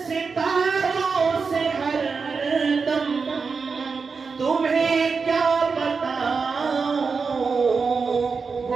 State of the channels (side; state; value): left; quieter; 5.0 dB